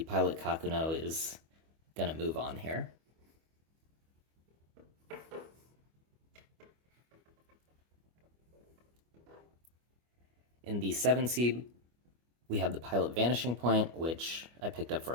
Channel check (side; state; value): left; late; 25 ms